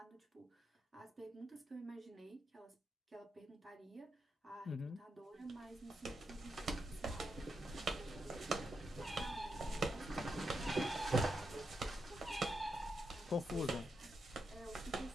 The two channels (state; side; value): normal; both; correlation 0.83